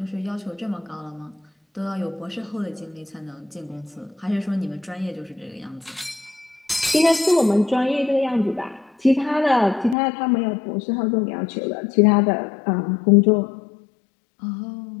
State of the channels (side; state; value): right; drops out; at 10.0 s